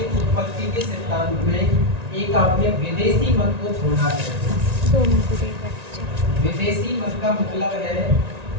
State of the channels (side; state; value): left; late; 1.9 ms